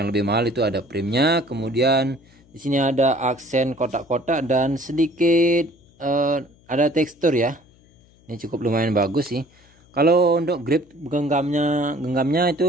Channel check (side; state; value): left; noise; hum, 30 dB below the sound